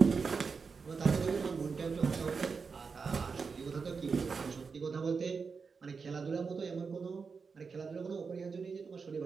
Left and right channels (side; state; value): left; quieter; 5.2 dB